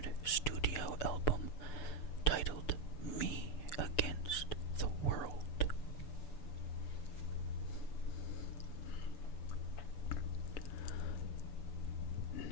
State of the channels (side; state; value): right; late; 6.9 ms